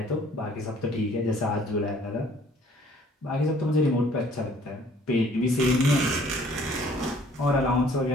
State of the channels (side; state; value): both; normal; correlation 0.57